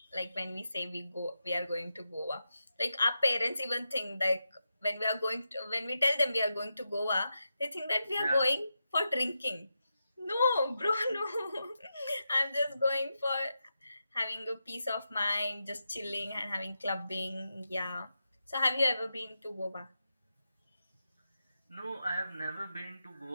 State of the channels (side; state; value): both; inverted; correlation -0.87